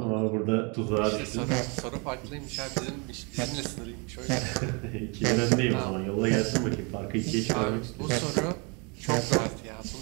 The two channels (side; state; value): left; quieter; 32.0 dB